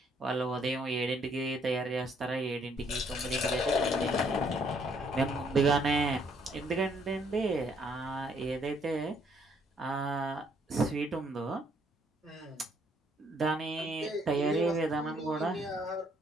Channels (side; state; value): both; normal; correlation 0.67